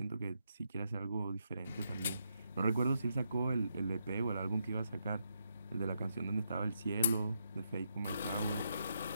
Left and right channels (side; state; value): both; inverted; correlation -0.80